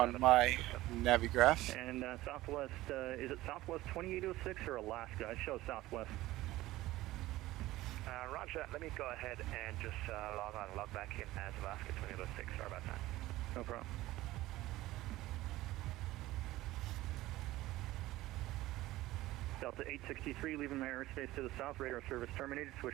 my Navigraph. And Southwest, is it Southwest 2806 or Alaska? I show Southwest. Roger, let me go ahead and just log on and log back in as Alaska 2806. Sorry about that. No problem. Delta 863, leaving my airspace to the south, radar service terminated,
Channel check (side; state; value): left; quieter; 17.0 dB